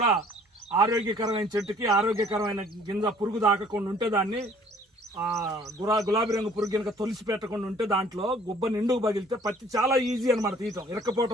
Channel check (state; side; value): normal; both; correlation 0.56